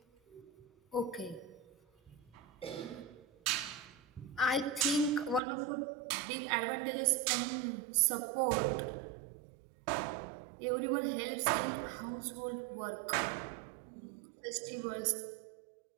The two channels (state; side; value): drops out; left; at 5.4 s